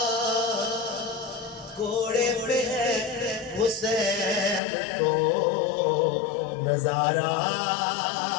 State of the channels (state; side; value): drops out; right; at 4.6 s